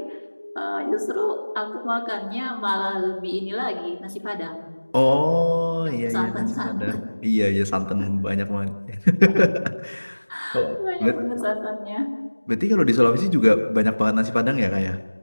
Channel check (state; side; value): inverted; both; correlation -1.00